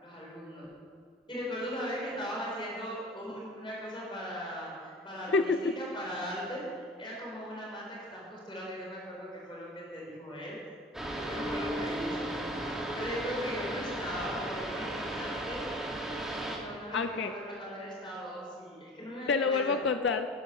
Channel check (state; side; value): normal; both; correlation 0.39